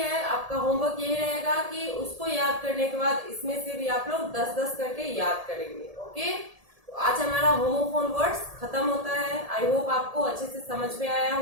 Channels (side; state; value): left; late; 1.7 ms